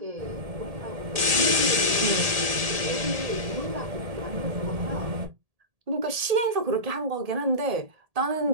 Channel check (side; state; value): left; late; 1.8 ms